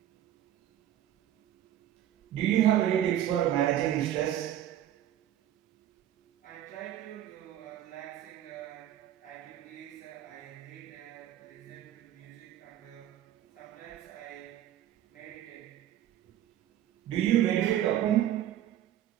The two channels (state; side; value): quieter; left; 11.8 dB